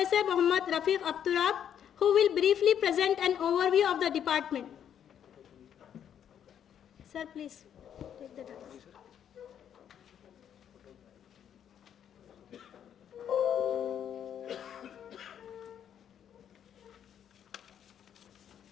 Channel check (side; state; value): right; quieter; 9.2 dB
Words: Muhammad Rafiq Abturab, who will briefly present an overview of the department. Sir, please take the dais.